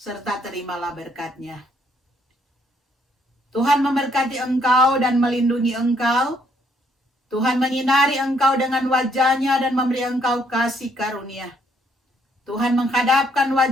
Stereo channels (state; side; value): normal; both; correlation 0.69